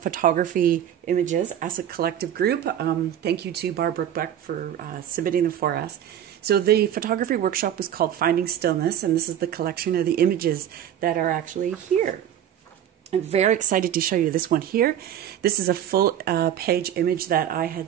images as a collective group. Thank you to Barbara Beck for submitting them for us. So the photography workshop was called Finding Stillness, and this is the collection of the images that are actually here. I'm very excited to show you this one here. This is a full page image that I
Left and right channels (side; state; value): left; quieter; 10.3 dB